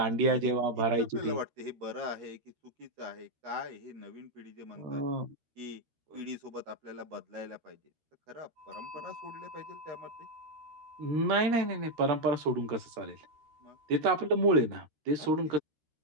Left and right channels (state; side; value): late; left; 13 ms